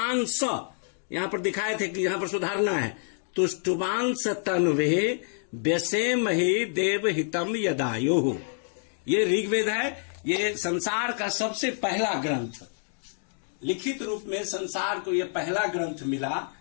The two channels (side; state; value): right; silent; digital silence